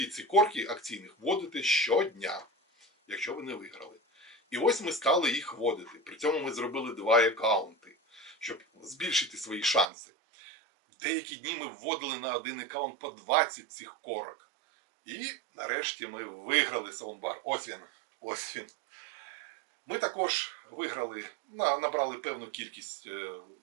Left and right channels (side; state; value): left; drops out; at 9.9 s